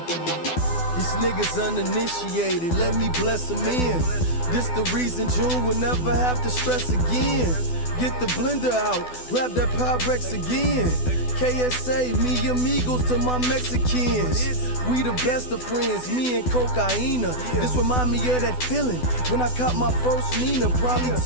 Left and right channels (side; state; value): right; late; 12 ms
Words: These niggas uninitiated, let me bless them in. This the reason June will never have to stress again. Get the blender out, grab that Pyrex again. KSA, me amigos to my Mexicans. We the best of friends, me and Cocaina. This remind me of that feeling when I caught my first Nina. Probably